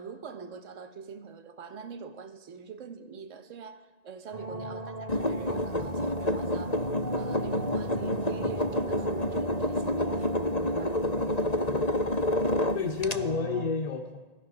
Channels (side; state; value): right; late; 1.9 ms